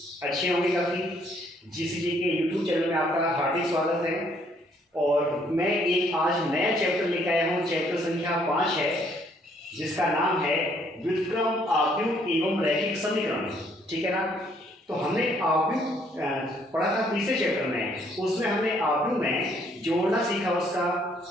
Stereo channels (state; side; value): normal; both; correlation 0.66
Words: अच्छे होंगे काफ़ी। जीसीजी के यूट्यूब चैनल में आपका हार्दिक स्वागत है। और मैं एक आज नया चैप्टर लेकर आया हूँ। चैप्टर संख्या 5 है, जिसका नाम है व्युत्क्रम, आव्यूह एवं रैखिक समीकरण। ठीक है ना? तो हमने आव्यूह पढ़ा था तीसरे चैप्टर में। उसमें हमने आव्यूह में जोड़ना सीखा,